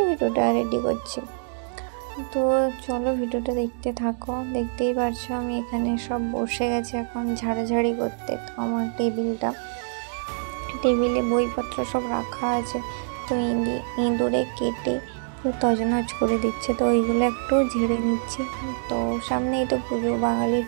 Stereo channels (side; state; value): left; silent; digital silence